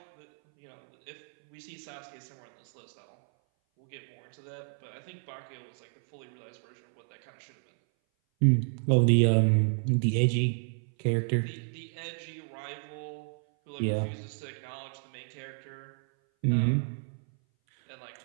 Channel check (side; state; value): left; silent; 57 dB below the other